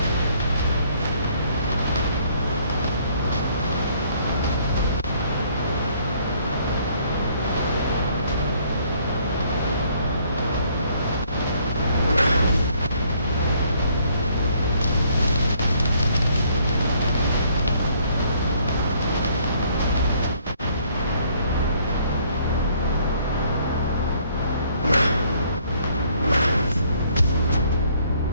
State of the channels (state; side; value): inverted; both; correlation -0.64